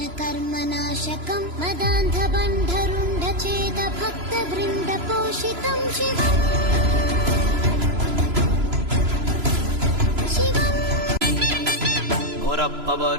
ಕರ್ಮ ನಾಶಕಂ ಮದಾಂಧ ಬಂಧರುಂಡ ಛೇದ ಭಕ್ತ ವೃಂದ ಪೋಷಿತಂ ಶಿವಂ ಬೋರಪ್ಪ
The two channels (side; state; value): left; late; 3.0 ms